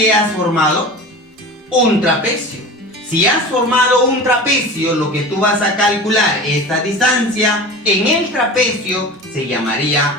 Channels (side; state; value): both; normal; correlation 0.34